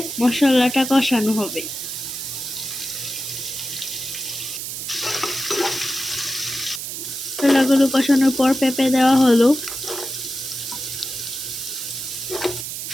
মশলাটা কষানো হবে। মশলাগুলো কষানোর পর পেঁপে দেওয়া হলো,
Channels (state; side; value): noise; right; hiss, 6 dB below the sound